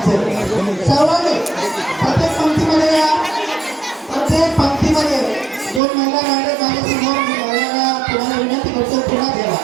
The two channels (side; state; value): left; drops out; at 5.8 s